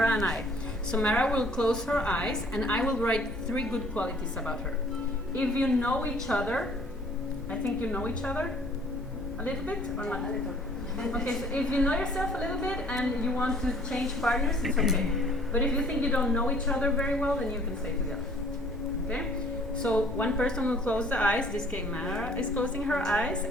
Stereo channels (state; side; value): normal; both; correlation 0.56